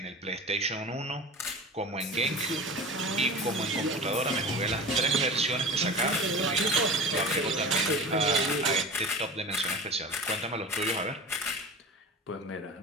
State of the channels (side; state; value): both; normal; correlation 0.34